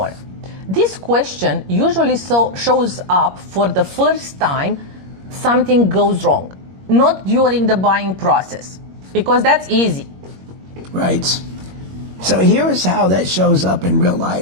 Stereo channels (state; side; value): late; left; 21 ms